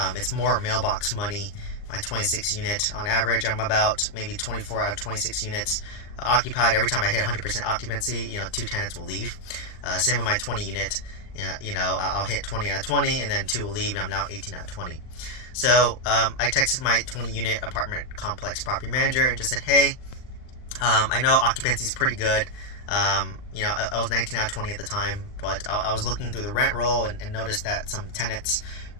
it's more mailbox money. My 26 unit, on average, I'm about maybe 24 out of 26 units occupied. Every time I hit 100% occupancy, two tenants will leave. Same with my 20 unit. I'll hit 20 out of 20, and then two will leave, and I'm now 18 out of 20. So I texted my 20 unit apartment complex property manager and just said, hey, I know occupancy is pretty good. I was 19 out of 20 at the time, but I was looking through the rent roll and noticed that some tenants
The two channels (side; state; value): right; late; 39 ms